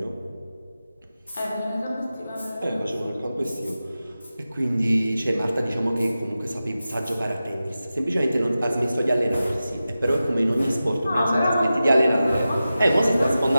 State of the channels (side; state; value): both; inverted; correlation -0.93